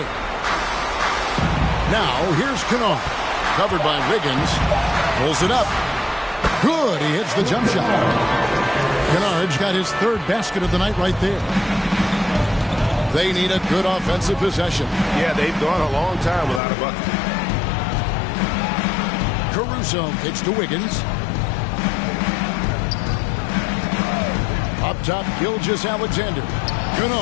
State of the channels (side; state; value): right; drops out; at 16.6 s